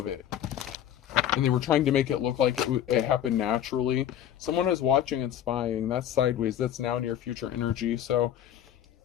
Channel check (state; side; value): quieter; right; 10.6 dB